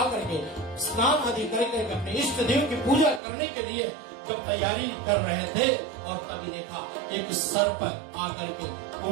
के स्नान आदि करके अपने इष्ट देव की पूजा करने के लिए जब तैयारी कर रहे थे, और तभी देखा एक सर्प आकर के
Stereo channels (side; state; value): left; drops out; at 3.2 s